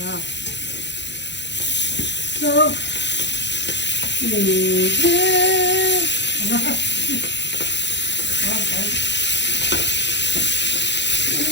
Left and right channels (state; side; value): late; right; 0.52 ms